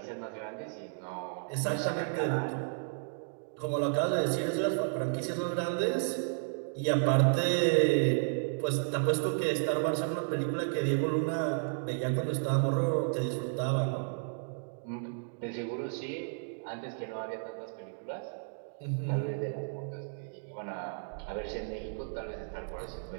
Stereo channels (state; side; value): silent; left; digital silence